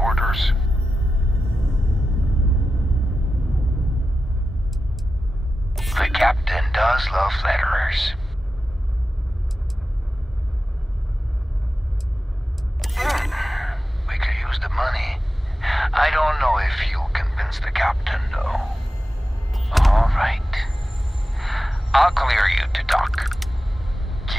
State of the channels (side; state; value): both; normal; correlation 0.93